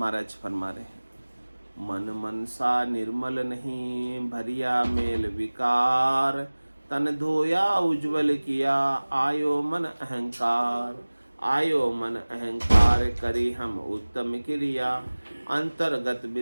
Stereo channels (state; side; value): inverted; both; correlation -1.00